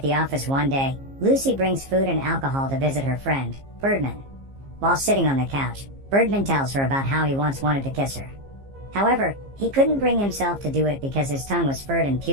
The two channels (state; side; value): late; left; 15 ms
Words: the office one day, Lucy brings food and alcohol to visit her friend, Birdman. While sitting on the couch, Birdman tells her about how he once wanted to kiss her. However, he couldn't bring himself to do it because his tongue was furred and